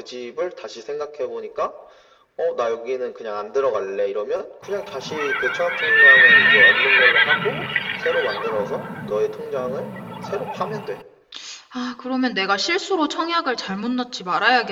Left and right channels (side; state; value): both; identical; correlation 1.00